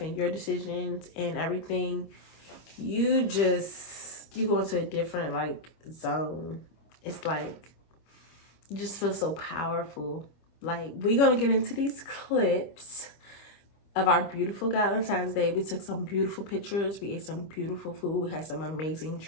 and your decisions and everything, you go into a different like zone. It's like you just feel so powerful. Like, we're gonna get into these clips of our beautiful Valentine's Day. We took some beautiful pictures. We ate some beautiful food. We had some amazing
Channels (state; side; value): late; right; 25 ms